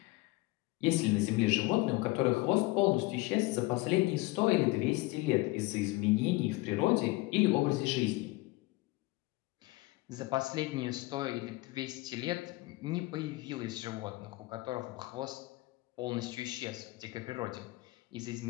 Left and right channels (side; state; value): right; quieter; 21.2 dB